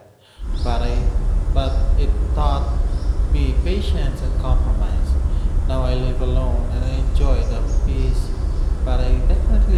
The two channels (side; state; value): both; identical; correlation 1.00